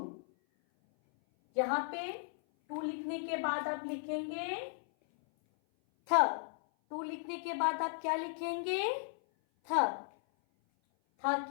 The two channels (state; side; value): silent; right; 54 dB below the other